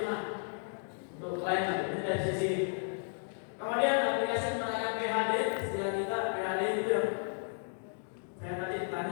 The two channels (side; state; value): right; silent; digital silence